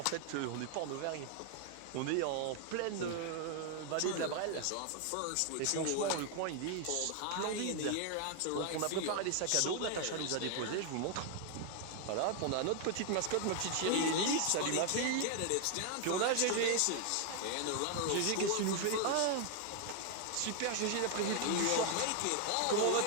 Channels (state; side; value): different; both; correlation 0.00